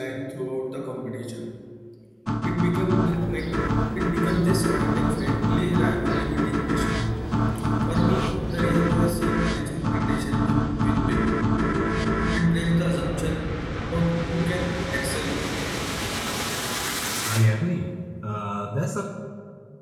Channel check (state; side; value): identical; both; correlation 1.00